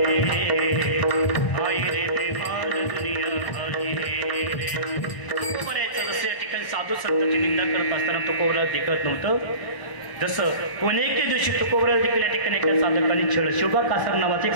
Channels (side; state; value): right; late; 1.0 ms